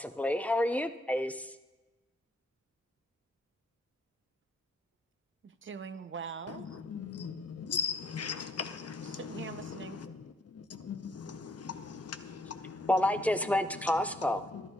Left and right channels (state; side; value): normal; both; correlation 0.67